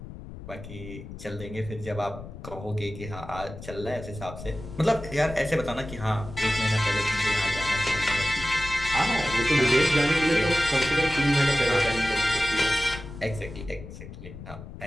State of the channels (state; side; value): noise; left; rumble, 13 dB below the sound